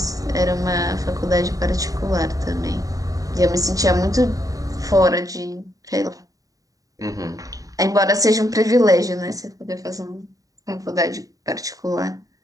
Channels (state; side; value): late; left; 0.17 ms